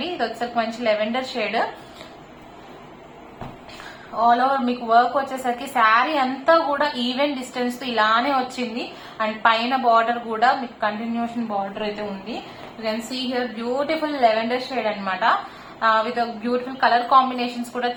ఇది వచ్చేసరికి మంచి లెవెండర్ షేడ్ ఆల్ ఓవర్ మీకు వర్క్ వచ్చేసరికి శారీ అంతా కూడా ఈవెన్ డిస్టెన్స్ తో ఇలానే వచ్చింది. అండ్ పైన బార్డర్ కూడా మీకు కంటిన్యూషన్ బార్డర్ అయితే ఉంది. You can see here beautiful lavender shade అనమాట. విత్ బ్యూటిఫుల్ కలర్ కాంబినేషన్స్ కూడా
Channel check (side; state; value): both; identical; correlation 1.00